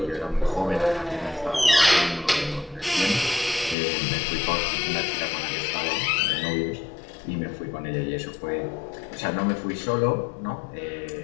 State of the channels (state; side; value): drops out; right; at 3.8 s